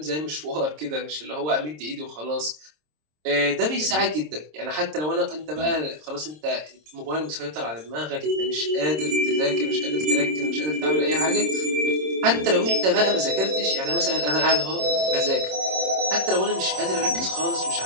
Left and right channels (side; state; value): left; late; 26 ms